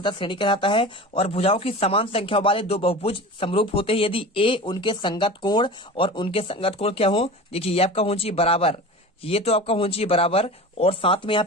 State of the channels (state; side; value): normal; both; correlation 0.34